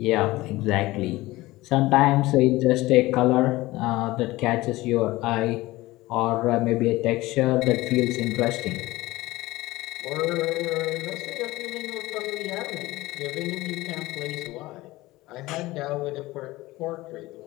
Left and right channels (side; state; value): right; quieter; 19.0 dB